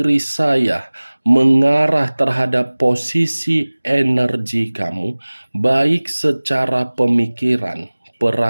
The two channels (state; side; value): inverted; both; correlation -1.00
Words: saya mengarah terhadap posisi energi kamu, baik secara pemikiran,